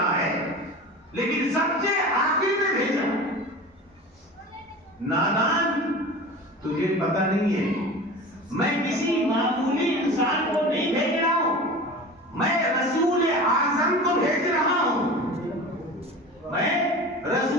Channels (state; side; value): normal; both; correlation 0.34